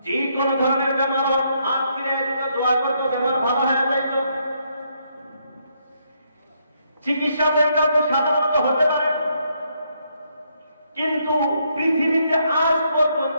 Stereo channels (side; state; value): both; inverted; correlation -0.75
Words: যে কোন ধরনের বেমার হাত ফিরে দিত, দোয়া করত, বেমার ভালো হয়ে যাইত। চিকিৎসা তো সাধারণত হতে পারে, কিন্তু পৃথিবীতে আজ পর্যন্ত